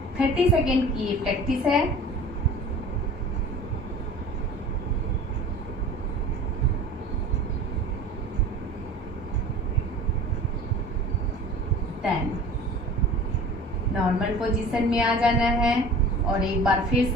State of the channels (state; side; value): normal; both; correlation 0.41